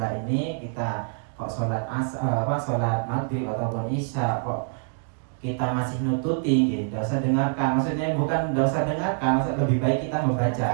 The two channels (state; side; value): silent; left; 59 dB below the other